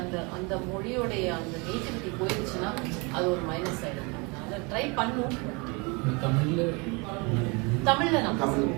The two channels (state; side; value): quieter; left; 29.3 dB